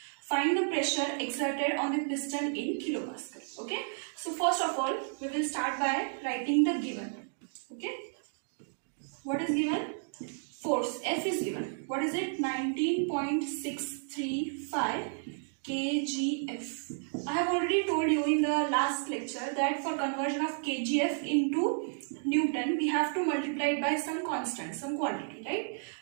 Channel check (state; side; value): silent; left; digital silence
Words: Find the pressure exerted on the piston in kilopascal. Okay. So first of all, we will start by writing the given. Okay. What is given? Force F is given. What is it? 19.635 kgf. I have already told you in the last lecture that for conversion of kgf into Newton, we have to multiply it by some constant, some quantity, right?